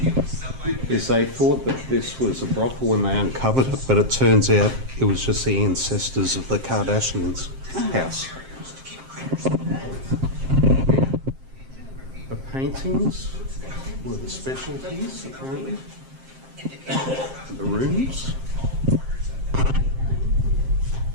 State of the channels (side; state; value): left; late; 7.6 ms